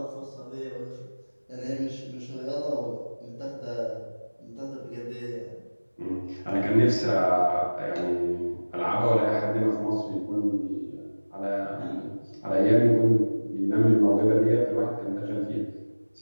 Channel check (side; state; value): both; inverted; correlation -1.00